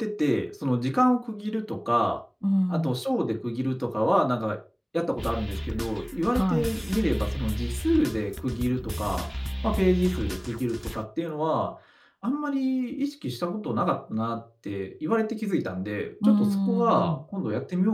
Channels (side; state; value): both; identical; correlation 1.00